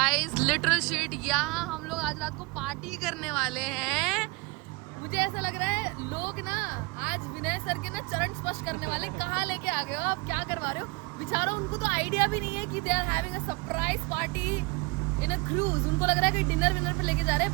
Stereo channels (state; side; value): quieter; left; 26.8 dB